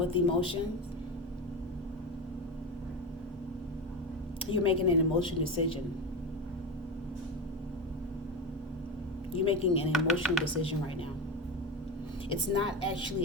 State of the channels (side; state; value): both; normal; correlation 0.20